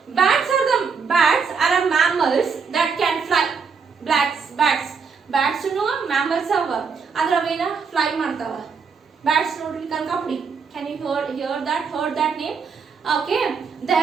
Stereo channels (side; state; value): left; quieter; 5.6 dB